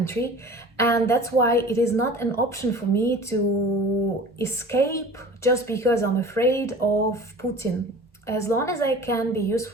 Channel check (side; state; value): both; normal; correlation 0.41